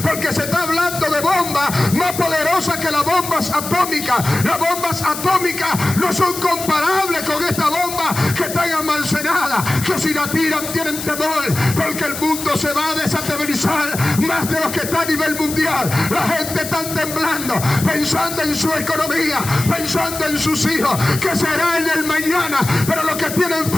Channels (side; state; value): left; noise; hiss, 8 dB below the sound